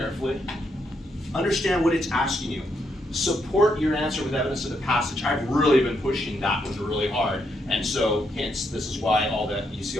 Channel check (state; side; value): normal; both; correlation 0.78